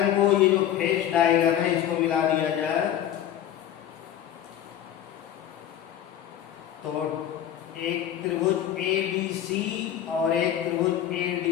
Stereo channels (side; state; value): right; quieter; 10.7 dB